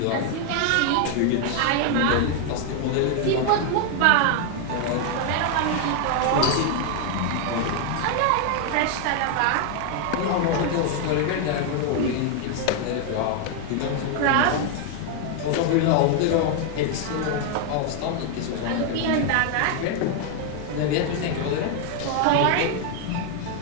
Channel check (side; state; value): both; different; correlation 0.00